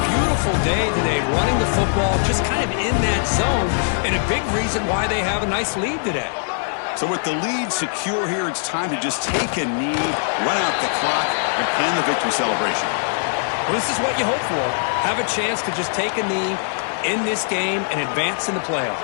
beautiful day today running the football, just kind of in that zone, and a big reason why they have a nice lead today. So with the lead secure here, it's time to just take a knee, run out the clock, and plan the victory celebration. Well, this is what you hope for. Have a chance to just take a knee in this game and advance in the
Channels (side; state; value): right; silent; 64 dB below the other